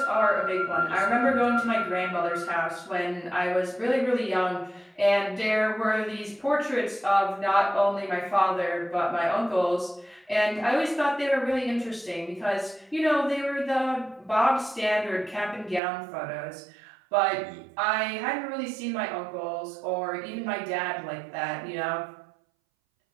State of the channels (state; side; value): drops out; left; at 15.8 s